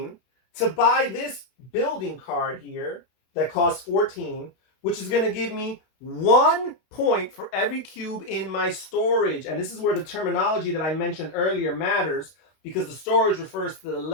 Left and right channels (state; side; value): late; right; 32 ms